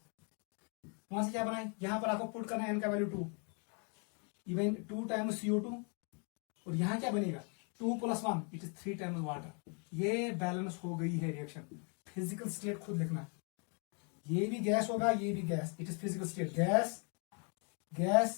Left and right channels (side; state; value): right; quieter; 38.0 dB